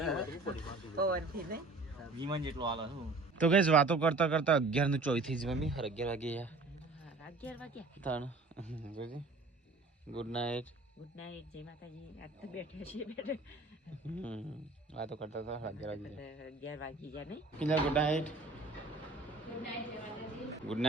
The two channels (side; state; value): left; quieter; 3.4 dB